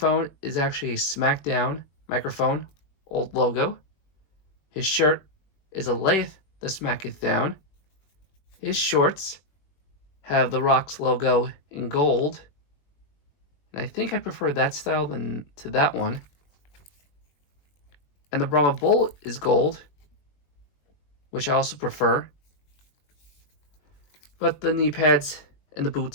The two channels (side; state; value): right; late; 20 ms